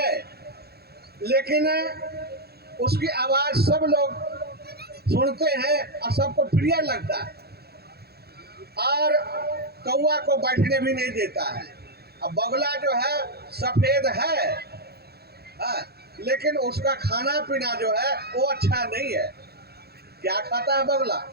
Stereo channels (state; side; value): late; left; 0.46 ms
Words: लेकिन उसकी आवाज सब लोग सुनते हैं और सबको प्रिय लगता है, और कौवा को बैठने भी नहीं देता है। अब बगला जो है सफेद है, हाँ, लेकिन उसका खाना पीना जो है वो अच्छा नहीं है। क्या खाता है बगला?